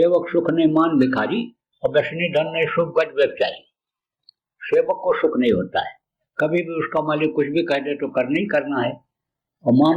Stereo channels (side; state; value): both; identical; correlation 1.00